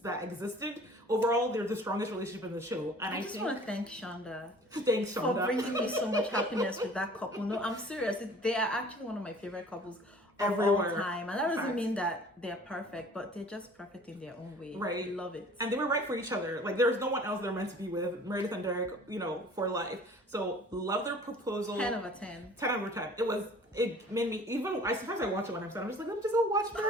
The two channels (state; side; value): normal; both; correlation 0.49